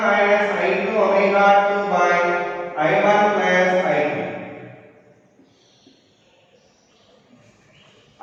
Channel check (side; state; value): both; identical; correlation 1.00